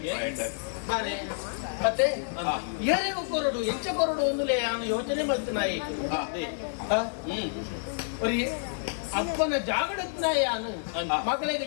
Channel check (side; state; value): right; silent; digital silence